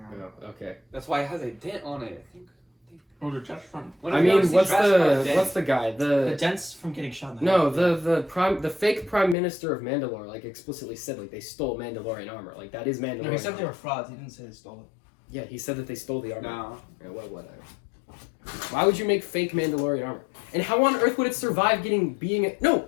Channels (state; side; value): drops out; right; at 9.3 s